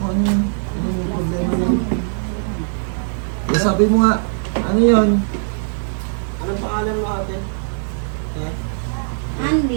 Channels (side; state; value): left; silent; digital silence